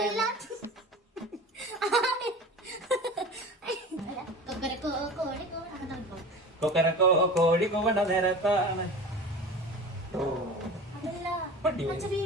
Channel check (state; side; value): normal; both; correlation 0.35